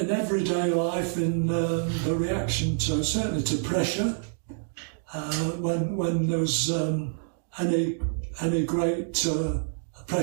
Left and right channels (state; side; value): silent; left; digital silence